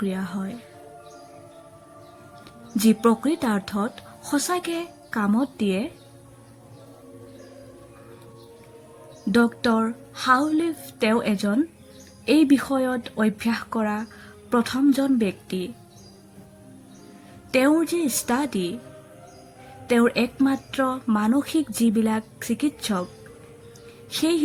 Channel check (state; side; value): identical; both; correlation 1.00